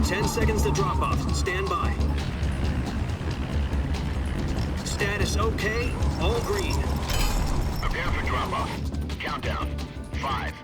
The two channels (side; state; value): both; identical; correlation 1.00